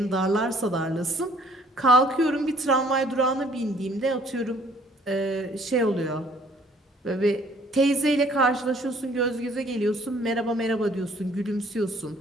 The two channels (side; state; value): both; normal; correlation 0.59